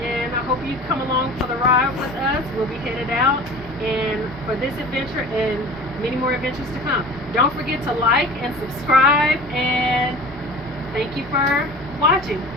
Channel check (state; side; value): normal; both; correlation 0.39